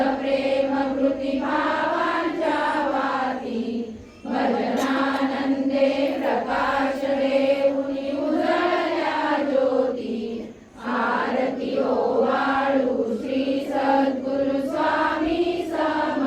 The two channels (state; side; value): identical; both; correlation 1.00